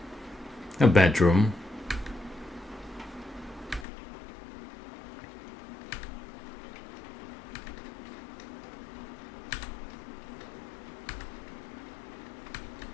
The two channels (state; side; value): drops out; right; at 3.9 s